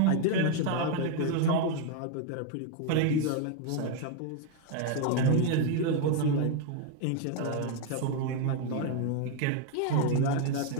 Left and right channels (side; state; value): both; different; correlation 0.01